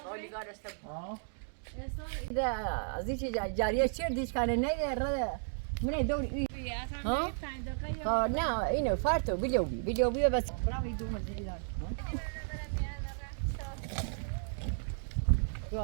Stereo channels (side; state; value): left; silent; digital silence